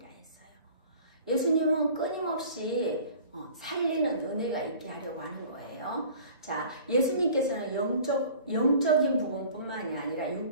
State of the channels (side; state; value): both; inverted; correlation -0.46